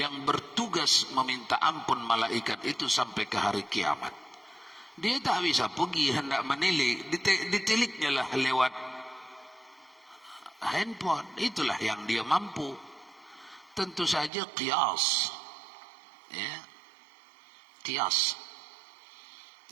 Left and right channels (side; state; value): left; drops out; at 14.3 s